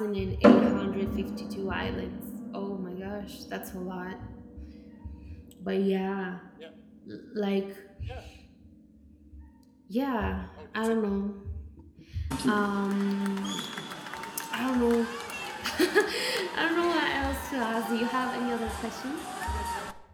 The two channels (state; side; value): identical; both; correlation 1.00